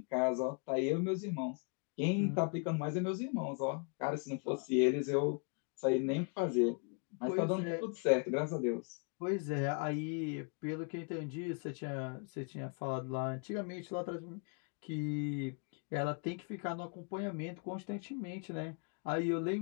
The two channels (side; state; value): right; quieter; 37.4 dB